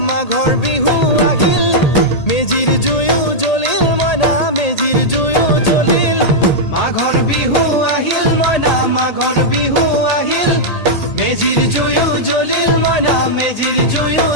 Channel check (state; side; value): late; right; 1.8 ms